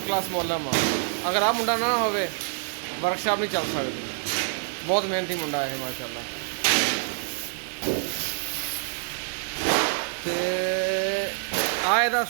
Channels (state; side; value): silent; left; 61 dB below the other